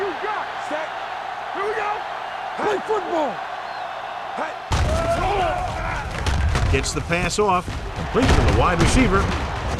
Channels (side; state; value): both; identical; correlation 1.00